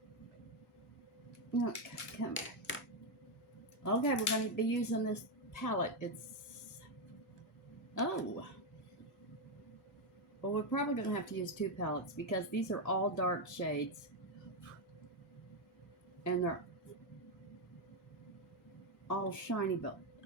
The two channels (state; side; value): normal; both; correlation 0.04